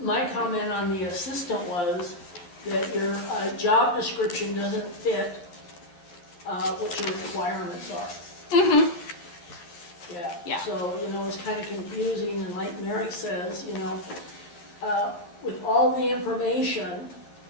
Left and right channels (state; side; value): late; right; 12 ms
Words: comment on the assistant was that your job description doesn't fit what your requirements are. Mm-hmm. Yeah. So, it's kind of confusing, and like Mary says, with all the information